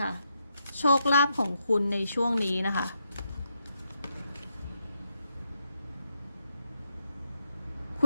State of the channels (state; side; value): inverted; both; correlation -0.81